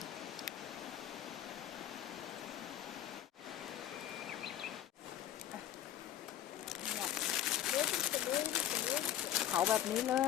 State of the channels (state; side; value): quieter; right; 11.2 dB